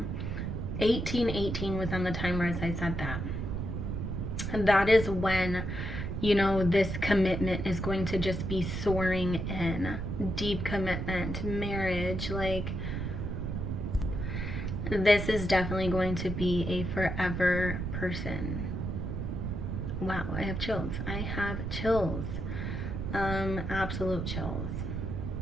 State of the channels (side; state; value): right; noise; rumble, 3 dB below the sound